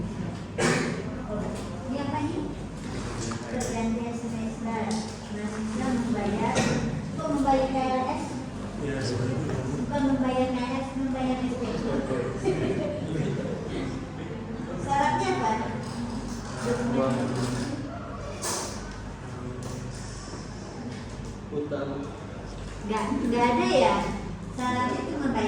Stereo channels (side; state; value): both; identical; correlation 1.00